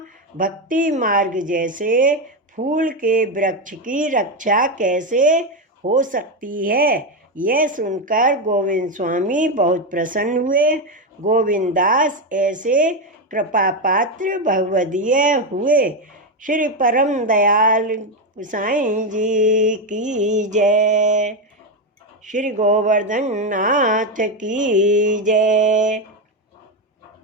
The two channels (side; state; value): both; normal; correlation 0.09